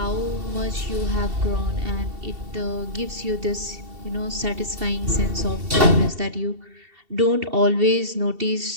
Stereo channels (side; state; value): left; late; 2.7 ms